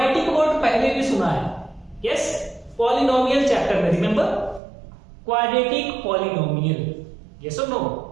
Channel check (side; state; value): left; drops out; at 4.6 s